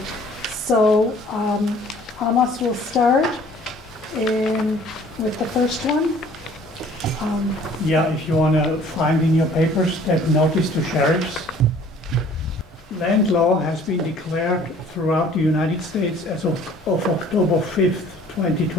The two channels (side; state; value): both; normal; correlation 0.53